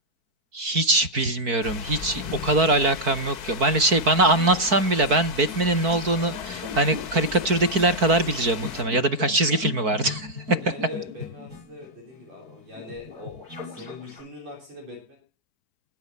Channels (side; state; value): left; late; 4.5 ms